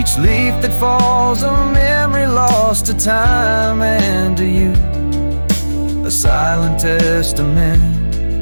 leaf that falls, a memory lost to time and to you, a silent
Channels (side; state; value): both; inverted; correlation -1.00